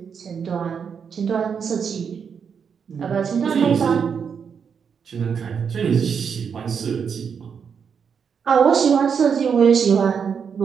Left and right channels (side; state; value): left; quieter; 6.7 dB